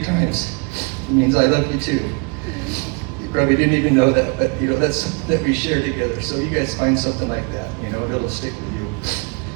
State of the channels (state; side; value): quieter; left; 33.1 dB